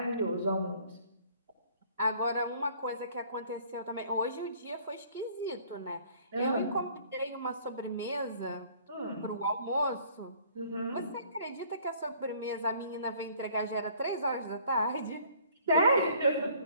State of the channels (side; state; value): both; inverted; correlation -0.56